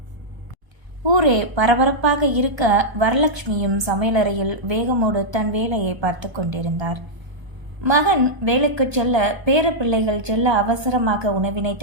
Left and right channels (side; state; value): left; late; 1.2 ms